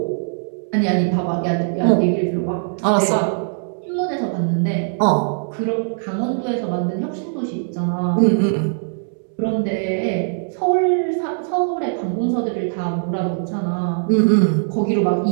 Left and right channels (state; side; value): silent; left; digital silence